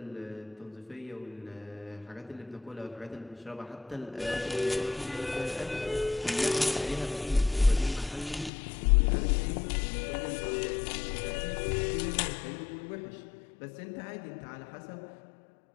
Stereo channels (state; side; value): drops out; right; at 8.5 s